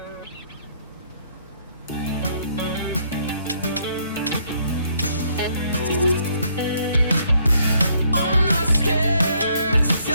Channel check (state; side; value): inverted; both; correlation -0.69